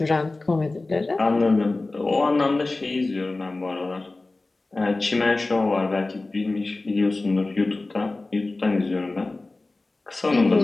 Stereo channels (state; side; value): quieter; right; 3.2 dB